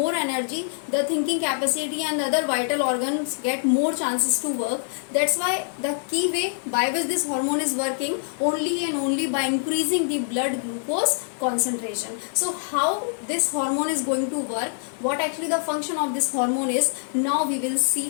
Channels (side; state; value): right; silent; digital silence